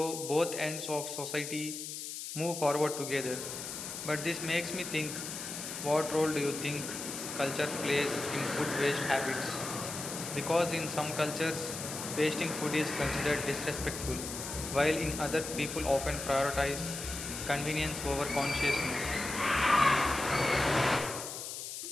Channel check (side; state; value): left; noise; hiss, 7 dB below the sound